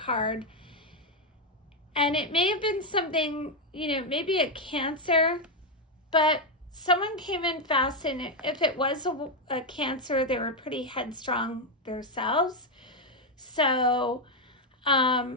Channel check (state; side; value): normal; both; correlation 0.04